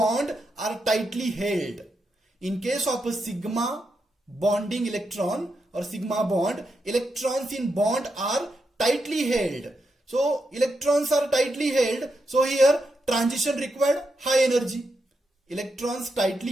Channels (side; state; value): both; normal; correlation 0.84